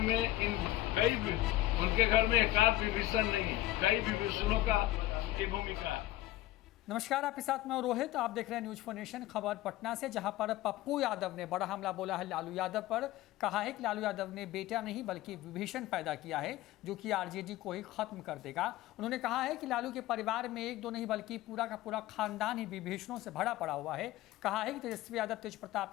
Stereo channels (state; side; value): quieter; right; 15.7 dB